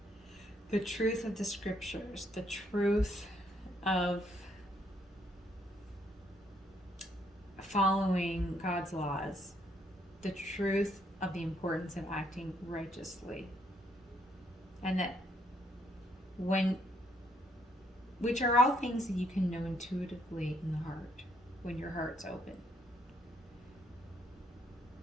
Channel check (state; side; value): normal; both; correlation 0.71